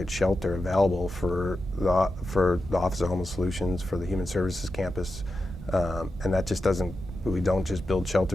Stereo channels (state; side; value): normal; both; correlation 0.90